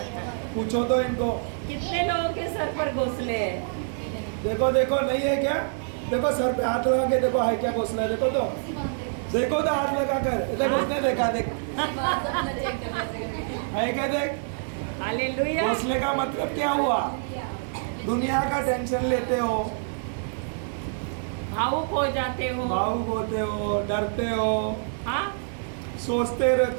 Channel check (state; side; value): silent; left; 61 dB below the other